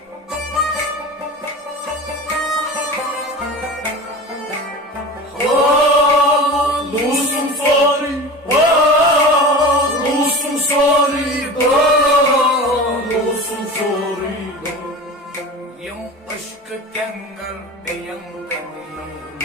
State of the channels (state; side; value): normal; both; correlation 0.33